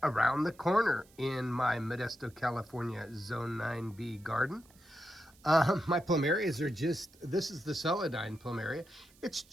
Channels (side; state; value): right; noise; hiss, 28 dB below the sound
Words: around the corner in my Modesto, California Zone 9B garden. My plumerias are this is the celandine plumeria. It's